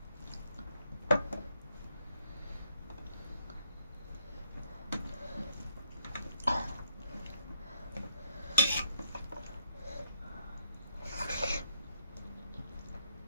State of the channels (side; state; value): both; inverted; correlation -0.72